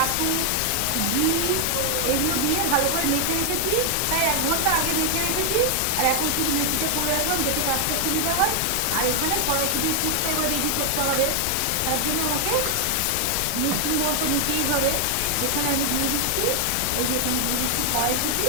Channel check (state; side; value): different; both; correlation 0.00